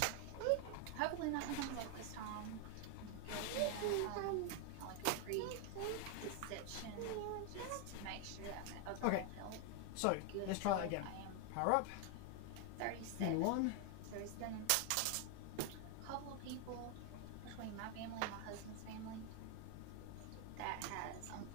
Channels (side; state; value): both; different; correlation 0.01